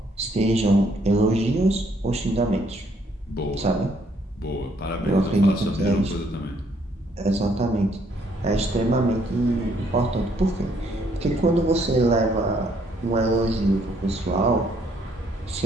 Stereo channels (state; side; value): normal; both; correlation 0.68